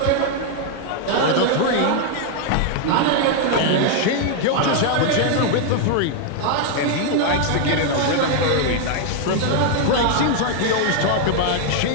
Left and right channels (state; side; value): different; both; correlation 0.00